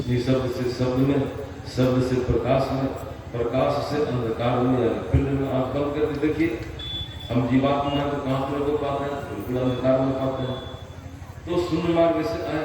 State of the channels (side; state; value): both; identical; correlation 1.00